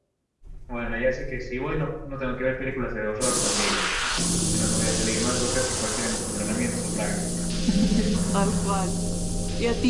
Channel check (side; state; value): both; identical; correlation 1.00